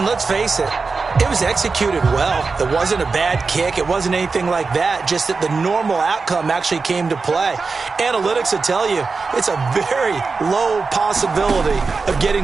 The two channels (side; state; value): left; quieter; 4.4 dB